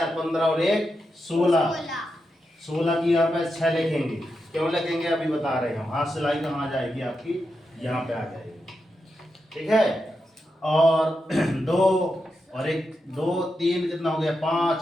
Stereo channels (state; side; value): normal; both; correlation 0.87